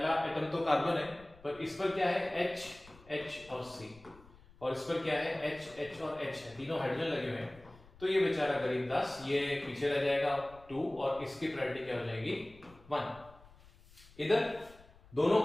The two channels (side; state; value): left; noise; rumble, 23 dB below the sound